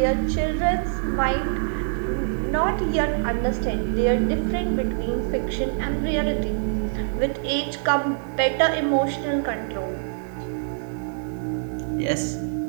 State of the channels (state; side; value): silent; left; digital silence